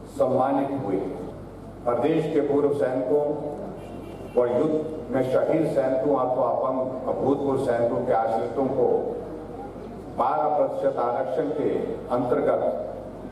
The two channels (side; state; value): both; identical; correlation 1.00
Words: सम्मानित हुए। प्रदेश के पूर्व सैनिकों व युद्ध में शहीद सैनिकों अथवा भूतपूर्व सैनिकों के आश्रितों को 12% आरक्षण के अंतर्गत